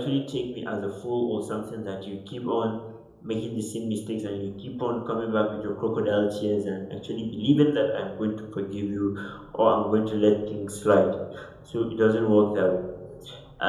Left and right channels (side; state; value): both; identical; correlation 1.00